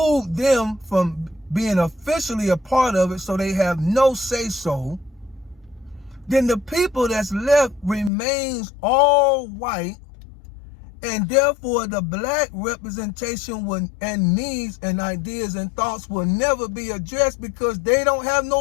them from being officially a part of it, so they have no say-so, then the people that's left remains all white, and therefore the black representation and needs and ideas and thoughts will never be addressed, because they don't have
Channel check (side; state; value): right; drops out; at 8.1 s